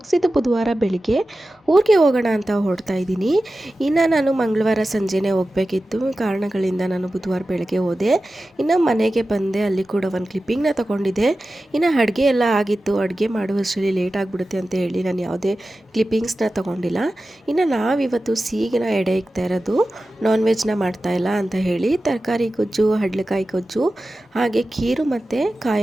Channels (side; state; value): both; normal; correlation 0.94